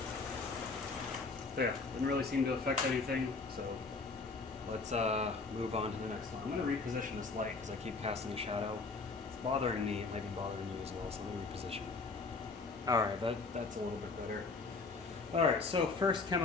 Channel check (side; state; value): right; quieter; 4.1 dB